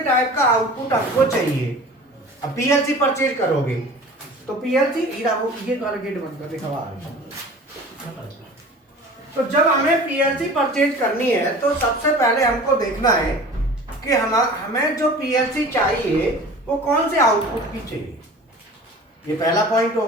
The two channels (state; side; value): normal; both; correlation 0.41